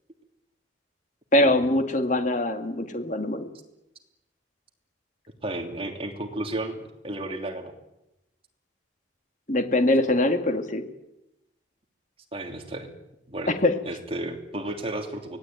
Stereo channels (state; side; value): normal; both; correlation 0.32